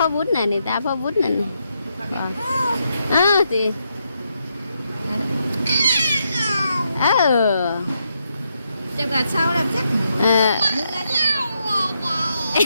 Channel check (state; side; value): inverted; both; correlation -0.80